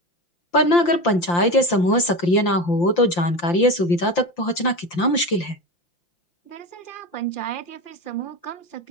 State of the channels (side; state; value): right; late; 5.8 ms